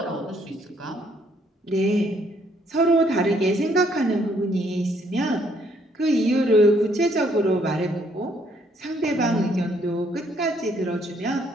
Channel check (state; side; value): normal; both; correlation 0.68